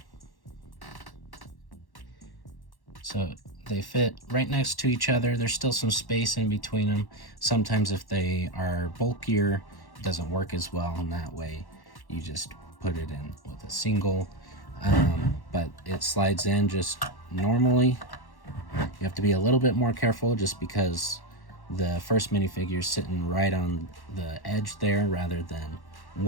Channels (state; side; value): late; right; 1.1 ms